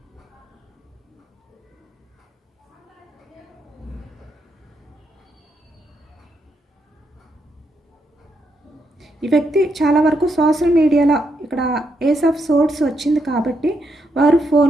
ఈ వ్యక్తి చాలా వరకు సోషల్ మీడియాలో ఇక్కడ ఏస్ ఆఫ్ సోర్స్ వచ్చింది కాబట్టి వారు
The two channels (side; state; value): both; normal; correlation 0.80